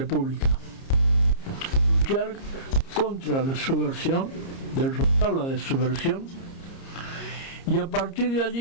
luchar contra la subversión, derrotar la subversión, y a partir de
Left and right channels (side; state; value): right; late; 30 ms